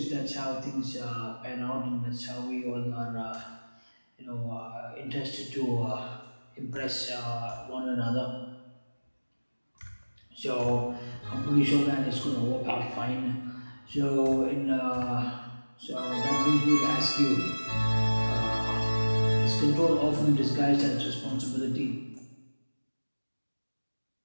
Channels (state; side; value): inverted; both; correlation -1.00